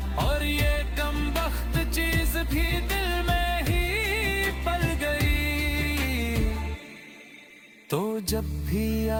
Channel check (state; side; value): identical; both; correlation 1.00